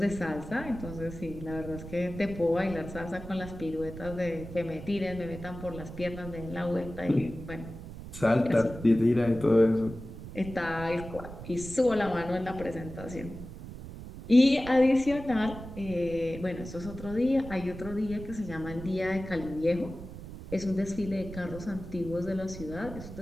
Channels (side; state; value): right; noise; rumble, 12 dB below the sound